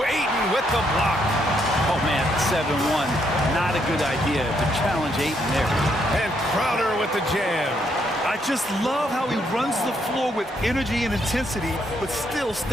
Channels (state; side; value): normal; both; correlation 0.74